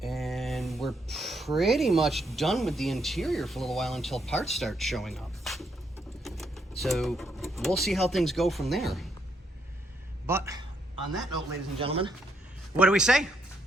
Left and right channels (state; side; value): normal; both; correlation 0.76